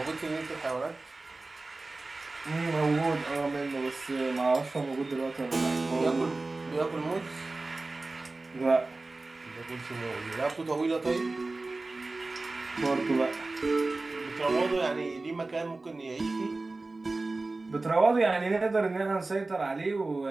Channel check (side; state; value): left; quieter; 3.3 dB